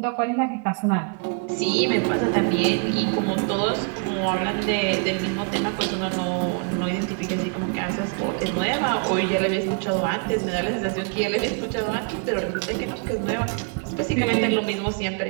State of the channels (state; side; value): quieter; left; 37.4 dB